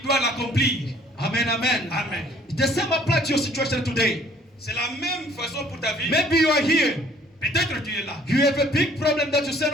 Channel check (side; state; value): both; normal; correlation 0.57